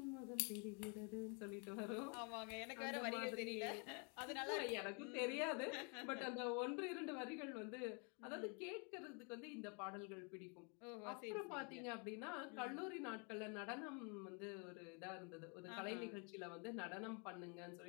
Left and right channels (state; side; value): quieter; right; 35.6 dB